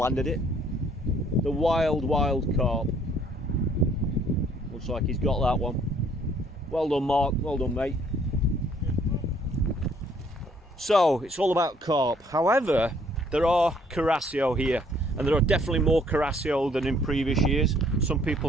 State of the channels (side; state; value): both; normal; correlation 0.62